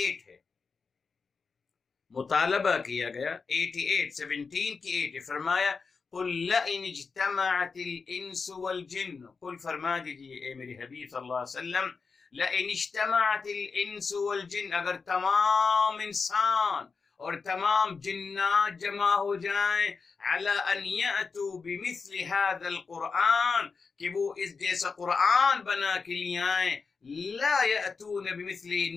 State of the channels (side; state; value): right; quieter; 4.9 dB